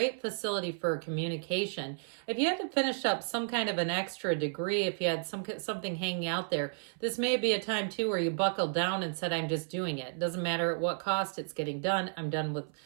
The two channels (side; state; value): left; silent; 56 dB below the other